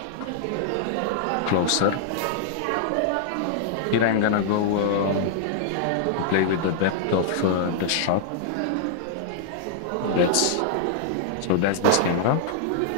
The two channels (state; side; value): different; both; correlation -0.01